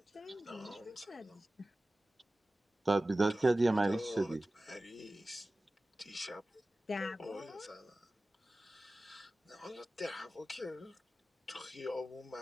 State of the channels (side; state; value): both; normal; correlation 0.96